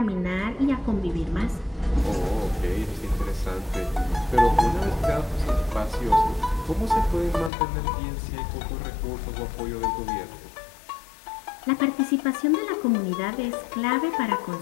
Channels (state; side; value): drops out; right; at 7.5 s